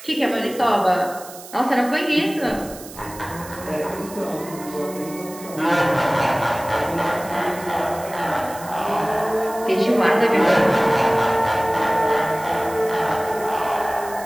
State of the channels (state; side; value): noise; right; hiss, 16 dB below the sound